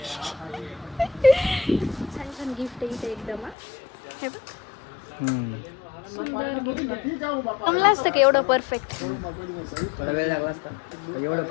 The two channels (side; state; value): right; drops out; at 3.6 s